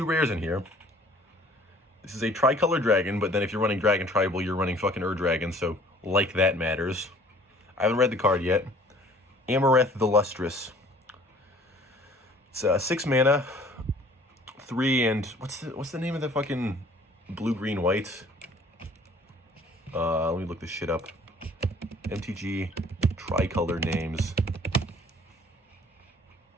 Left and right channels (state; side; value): normal; both; correlation 0.53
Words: rares in here. This is a Tricolor Dragon, but then if you're running Dragon Tribal, you're running fucking Dragon, so like that matters. I haven't read the card yet. Amareth the Lustrous. It's 6 mana, 3 and what's the name of the fucking blue, green, white? Let me look this shit up. MTG Tricolor names.